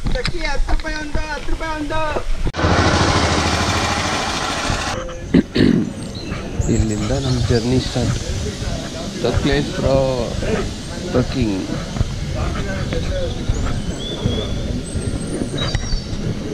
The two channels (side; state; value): both; identical; correlation 1.00